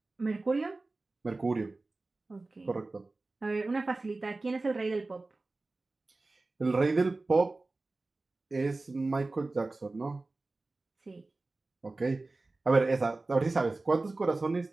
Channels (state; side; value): quieter; left; 3.3 dB